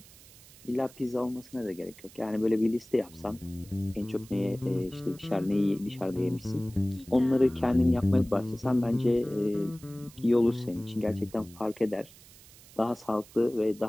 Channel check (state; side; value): noise; right; hiss, 22 dB below the sound